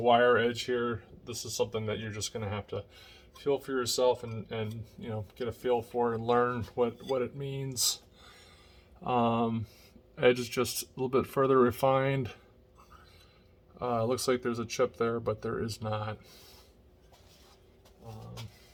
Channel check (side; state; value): both; identical; correlation 1.00